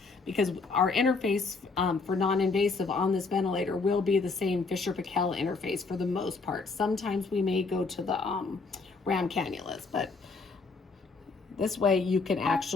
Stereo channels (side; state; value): right; quieter; 4.2 dB